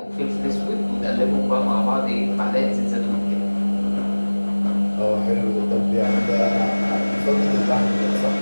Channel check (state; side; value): inverted; both; correlation -1.00